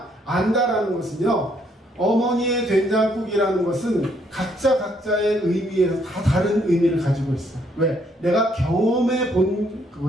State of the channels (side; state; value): both; normal; correlation 0.69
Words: 안다라는 것은요, 어머니의 된장국이라는 것은 각자의 의미에서 다 다른 의미를 가지고 있어요. 왜? 내가 경험해 본